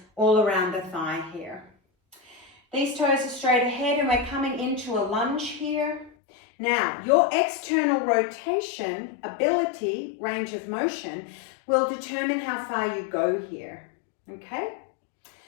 all around the thigh here. These toes are straight ahead and we're coming into a lunge here. Now, your external rotation, ability, range of motion will determine how far you go here, okay?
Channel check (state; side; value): drops out; right; at 6.1 s